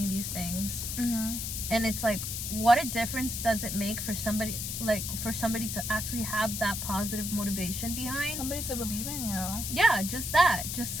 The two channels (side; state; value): left; noise; hiss, 4 dB below the sound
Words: these things. And it's like, what a difference does it make for somebody to actually have that positive motivation behind, somebody to believe in you. Yeah, just